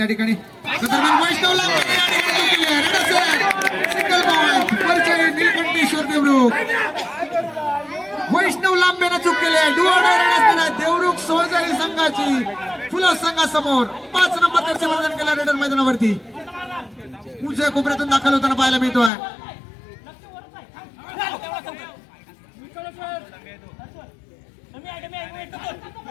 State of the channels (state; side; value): drops out; right; at 19.1 s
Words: ठिकाणी वैष्णवला सिंगल पॉइंट परिचय नीलकंठेश्वर देवरुख. वैष्णव लांबेनं चूक केली आहे. डू ऑर डाय रेड असणार आहे. देवरुख सोजई संघाची फुलं संघासमोर 5 नंबर त्याचे वर्णन केलं रेडर मैदानावरती उजव्या कोपऱ्यातून दाखल होताना पाहायला मिळतोय.